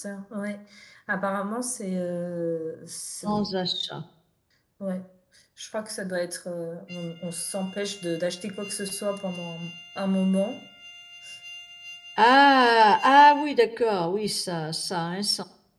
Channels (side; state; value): both; identical; correlation 1.00